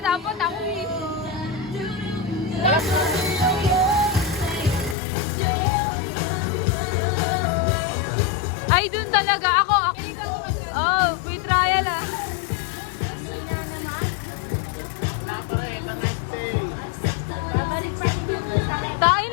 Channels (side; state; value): right; drops out; at 5.0 s